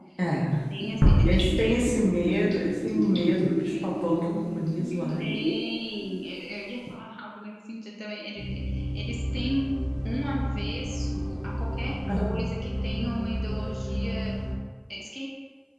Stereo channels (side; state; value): both; identical; correlation 1.00